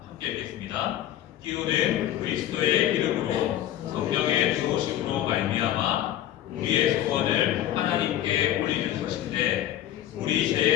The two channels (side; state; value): right; quieter; 12.3 dB